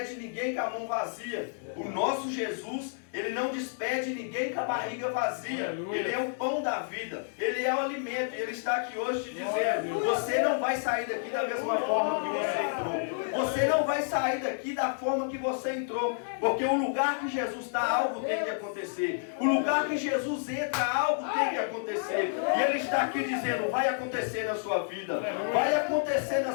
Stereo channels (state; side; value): silent; right; digital silence